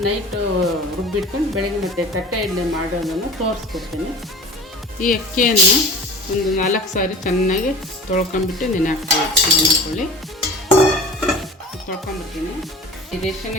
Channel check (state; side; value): normal; both; correlation 0.39